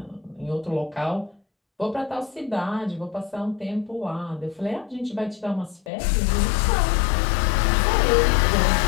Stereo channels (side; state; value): right; drops out; at 5.9 s